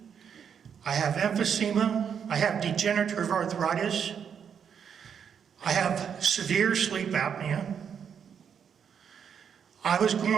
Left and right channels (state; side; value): quieter; left; 7.5 dB